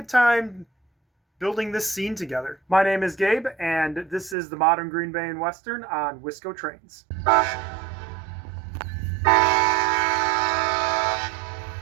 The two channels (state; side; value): drops out; left; at 4.4 s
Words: time building this scene together. My name is Gabe, and this is the Modern Green Bay and Western on WiscoTrains.